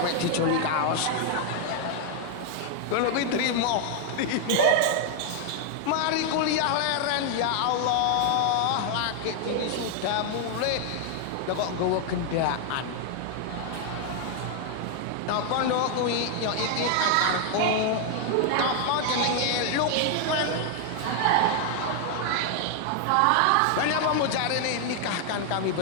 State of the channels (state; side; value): different; both; correlation 0.00